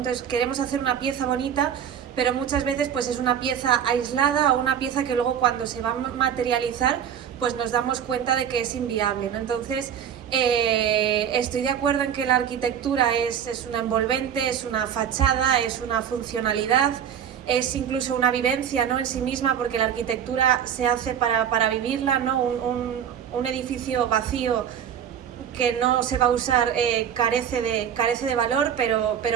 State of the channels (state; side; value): quieter; left; 8.8 dB